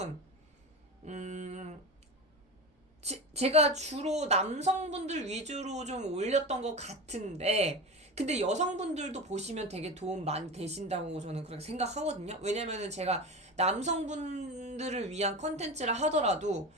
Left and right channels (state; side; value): normal; both; correlation 0.27